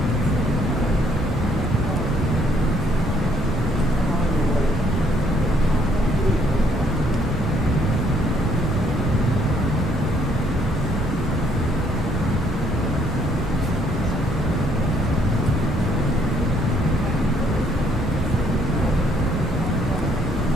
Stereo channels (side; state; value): both; normal; correlation 0.67